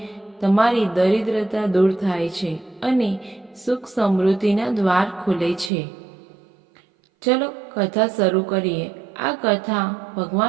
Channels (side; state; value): left; drops out; at 5.7 s